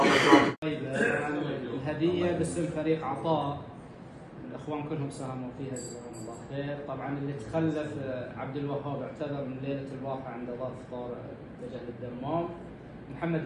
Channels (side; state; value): both; identical; correlation 1.00